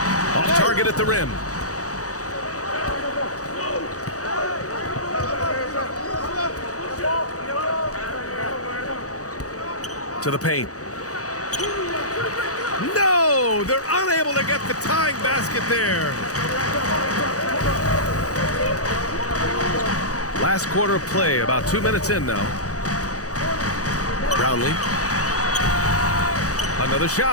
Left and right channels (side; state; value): right; late; 0.66 ms